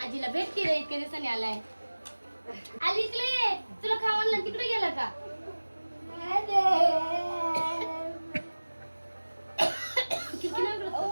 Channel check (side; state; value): both; inverted; correlation -1.00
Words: आजीला भेट की रे, इतक्या दिवसांनी आलाय. आली इकडे. तुला खावायला तिकडे गेला का? किती